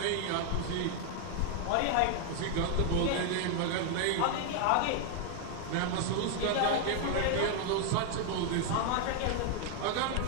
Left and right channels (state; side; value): different; both; correlation 0.00